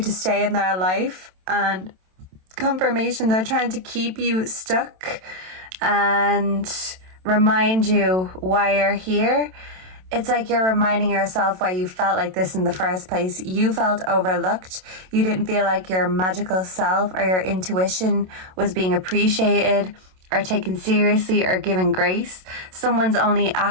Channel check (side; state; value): left; late; 27 ms